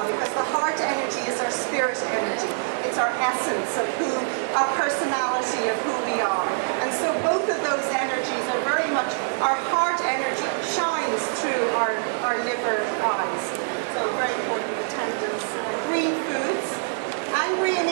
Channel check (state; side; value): silent; left; 62 dB below the other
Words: because the heart energy is our spirit energy. It's our essence of who, our personality of who we are. And so both of those energies are very much, our heart energy shines through our liver eyes. So very important attendance. Green foods. Angry and